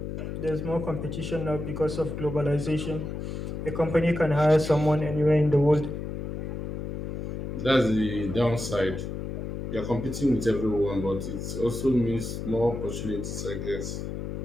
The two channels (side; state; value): left; noise; hum, 5 dB below the sound